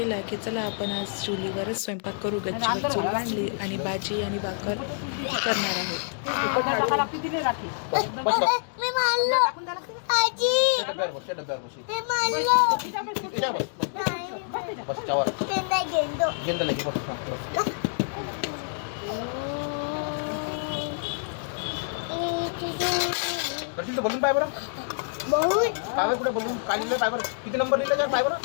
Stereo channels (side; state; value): right; silent; digital silence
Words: की चला आपण आज चुलीवरच स्वयंपाक करू. गच्चीवर चूल बांधली आणि भाजी आणि भाकर करणार आहोत. दर्शन तो बलून पाय बरं पायवर कुठे बलून काय लिहिलं पायवर किती नंबर लिहिलं त्या पायवर